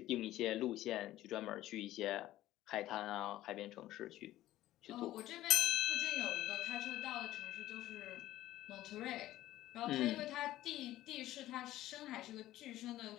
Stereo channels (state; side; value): quieter; right; 14.8 dB